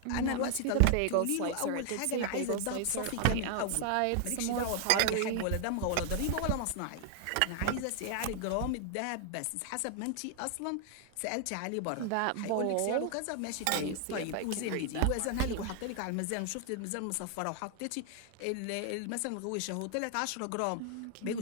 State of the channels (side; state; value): both; different; correlation 0.00